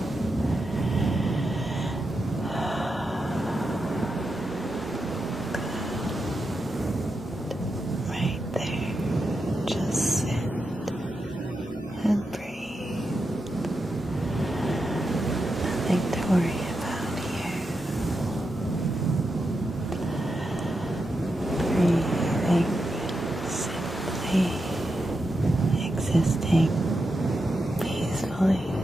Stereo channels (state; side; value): normal; both; correlation 0.87